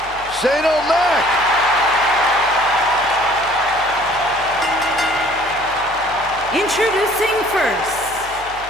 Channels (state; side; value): noise; left; hum, 20 dB below the sound